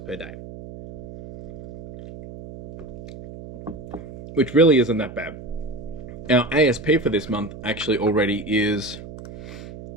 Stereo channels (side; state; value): right; noise; hum, 14 dB below the sound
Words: per day, which really isn't that bad. Our ASP for this month actually already is,